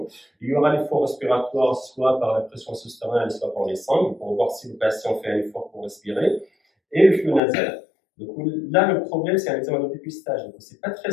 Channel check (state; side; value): drops out; right; at 7.4 s